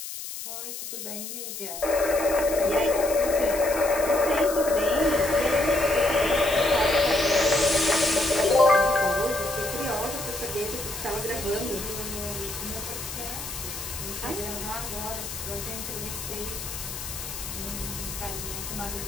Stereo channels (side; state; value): left; noise; hiss, 8 dB below the sound